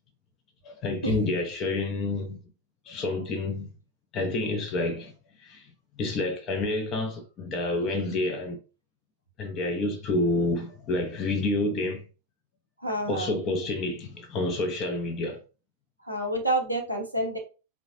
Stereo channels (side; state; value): both; normal; correlation 0.20